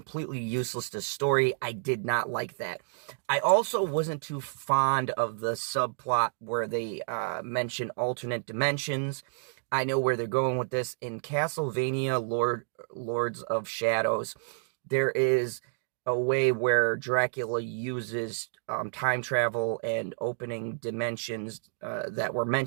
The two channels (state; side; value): silent; left; digital silence